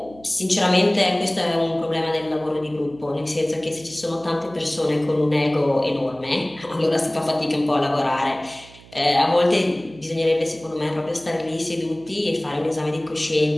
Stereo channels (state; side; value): noise; right; hum, 22 dB below the sound